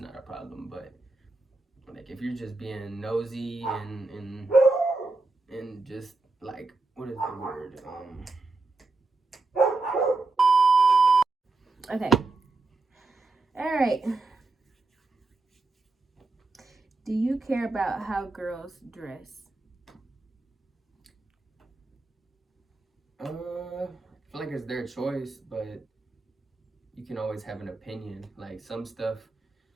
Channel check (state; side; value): quieter; left; 3.4 dB